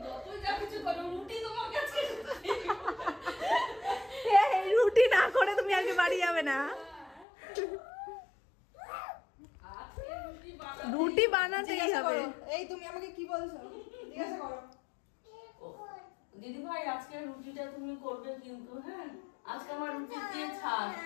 রুটি না করে তুমি আজকে বাড়ি যাবে না। রুটি বানাতেই হবে। এই তুমি আমাকে কি বলছো? জিজ্ঞাসা করো। দিদি ভাই আজকে রুটিটা তুমি করবে কিন্তু, হ্যাঁ আজকে আমার রুটি দিয়ে ছাড়।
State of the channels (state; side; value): drops out; right; at 7.2 s